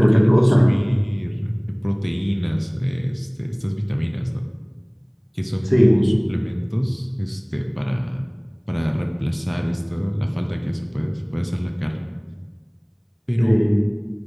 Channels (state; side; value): identical; both; correlation 1.00